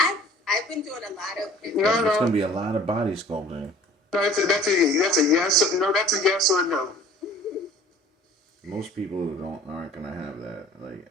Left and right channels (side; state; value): both; normal; correlation 0.49